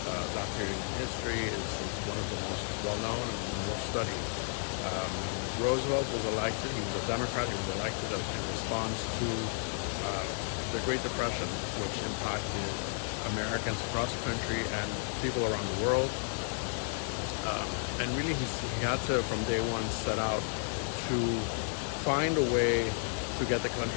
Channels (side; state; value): right; silent; 56 dB below the other